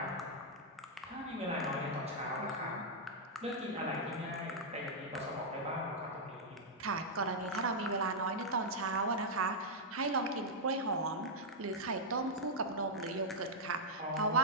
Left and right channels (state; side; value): normal; both; correlation -0.05